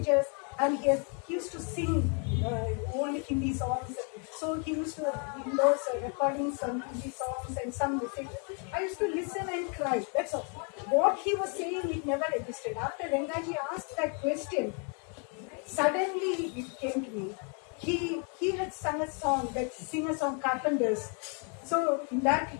and he used to sing old Hindi songs. So he used to, in those recordings, some Hindi songs and some messages. I used to listen and cry. That's all. What he was saying, it never existed. After Rangaji asked that question, suddenly it came to me. He had sung a song, that singer song, Carpenters. So in that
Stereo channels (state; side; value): quieter; right; 38.4 dB